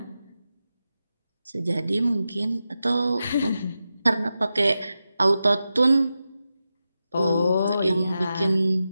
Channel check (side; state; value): both; inverted; correlation -0.91